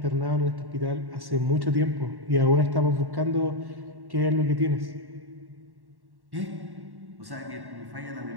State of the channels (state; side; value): late; left; 1.1 ms